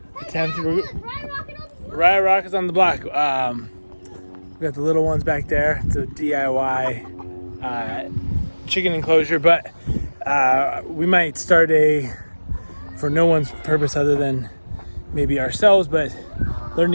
attempt. Riot Rock is on the block. We got the little ones back there. It's a DIY chicken enclosure, but we might start for no one's purpose other than maybe ourselves, but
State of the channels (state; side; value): inverted; both; correlation -1.00